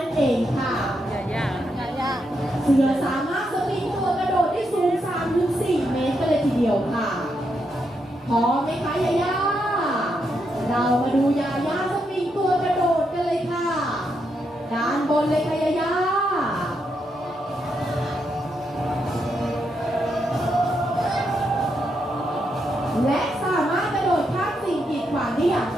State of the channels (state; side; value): normal; both; correlation 0.81